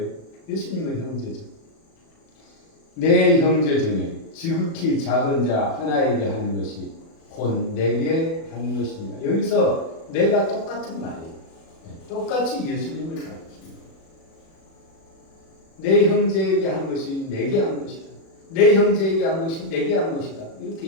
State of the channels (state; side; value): late; right; 36 ms